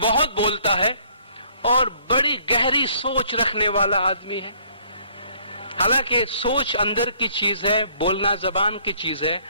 بہت بولتا ہے اور بڑی گہری سوچ رکھنے والا آدمی ہے؟ حالانکہ سوچ اندر کی چیز ہے، بولنا زبان کی چیز ہے،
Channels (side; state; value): both; inverted; correlation -0.62